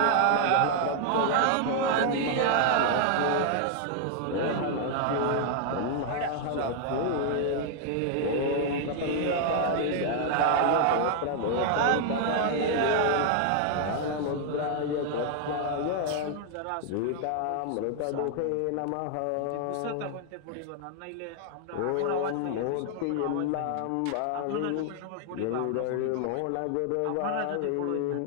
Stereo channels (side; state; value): both; different; correlation 0.00